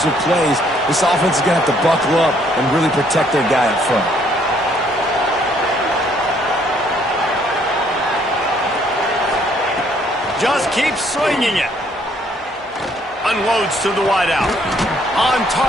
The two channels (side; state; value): both; normal; correlation 0.65